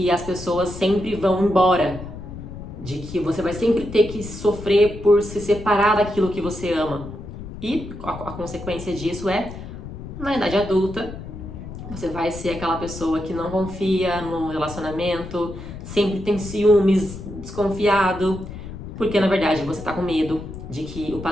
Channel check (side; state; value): left; noise; rumble, 11 dB below the sound